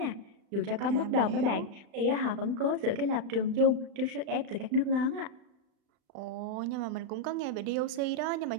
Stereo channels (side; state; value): left; late; 36 ms